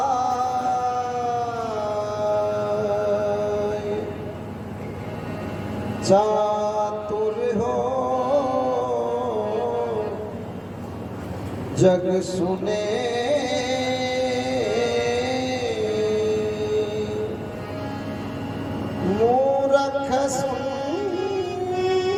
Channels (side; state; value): both; identical; correlation 1.00